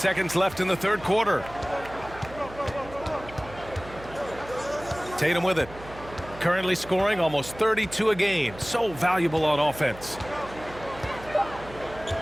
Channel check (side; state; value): right; noise; hum, 16 dB below the sound